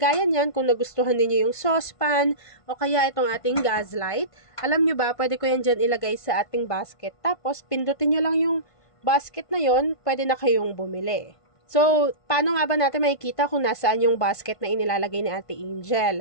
niyan, kung nagustuhan niyo yung saucepan o kaya itong ating gas light, alam nyo ba, pwede ko yan dyan ilagay sa ating basket. Tapos, pindutin nyo lang yung basket na yon, pwede na kayong bumili. So, paano nga ba natin makikita kung nasaan yung basket na inilalagay ni Ate Angel?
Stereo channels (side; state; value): right; late; 1.5 ms